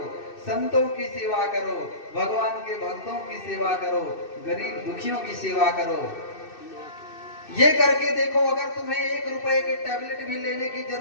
संतों की सेवा करो, भगवान के भक्तों की सेवा करो, गरीब दुखियों की सेवा करो। ये करके देखो, अगर तुम्हें 1 रुपए के टैबलेट भी लेने की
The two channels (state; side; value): late; right; 2.6 ms